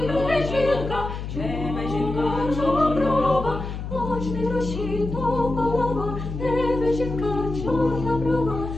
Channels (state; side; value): noise; left; hum, 7 dB below the sound